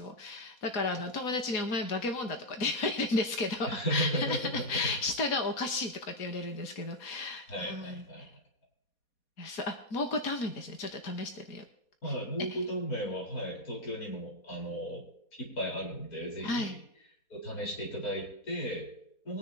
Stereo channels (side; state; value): right; late; 4.2 ms